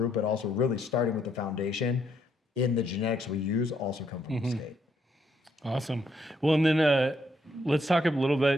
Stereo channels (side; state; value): both; normal; correlation 0.74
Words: but also really starting with the foundation in the genetics we use also come from the state. Awesome. Well, and then let's talk a little